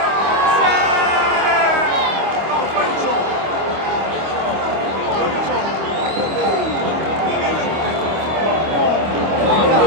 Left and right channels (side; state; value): left; late; 25 ms